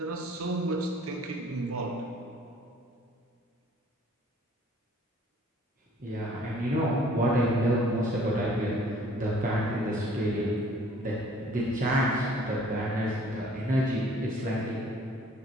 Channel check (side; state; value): both; normal; correlation 0.56